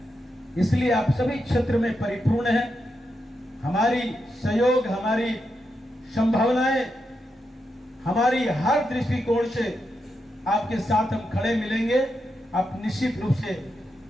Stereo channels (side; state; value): both; normal; correlation 0.85